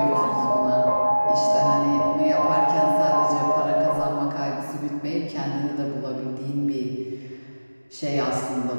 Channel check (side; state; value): both; inverted; correlation -1.00